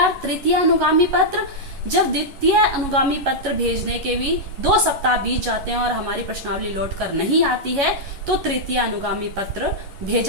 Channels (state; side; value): late; left; 11 ms